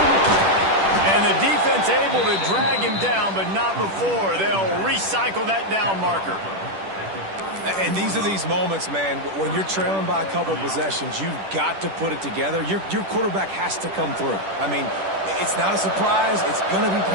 And the defense able to drag him down, but not before. They'll recycle that down marker. And these are these moments, man, when you're trailing by a couple of possessions, you've got to put it together. Your quarterback has to come through. I mean, it's not a surprise. It's going to be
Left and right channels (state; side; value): late; left; 10 ms